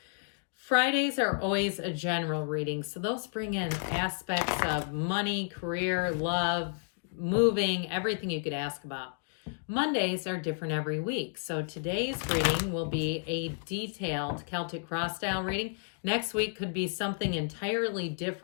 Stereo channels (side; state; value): right; silent; digital silence